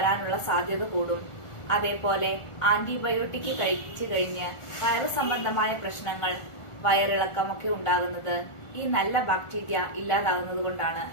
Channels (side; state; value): right; late; 1.4 ms